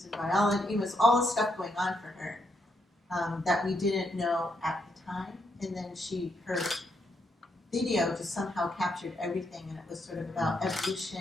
in biology. It was all the stuff going on for her that we didn't know at the time. And then her video just somehow captured everything, and it was sort of about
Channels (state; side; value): normal; both; correlation 0.78